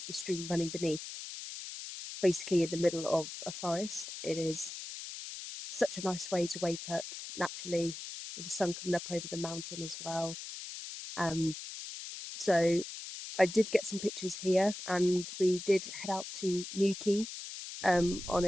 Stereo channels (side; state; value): left; noise; hiss, 9 dB below the sound